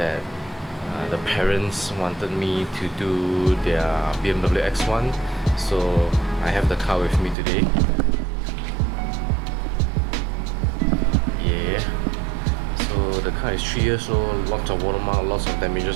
the parents wanted me to do their BMW X1. So I have the car with me today. So the car is 3 years old, lots of watermark, lots of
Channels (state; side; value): drops out; left; at 7.4 s